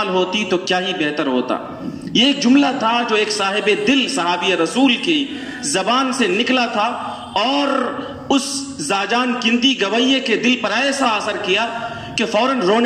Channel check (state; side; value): identical; both; correlation 1.00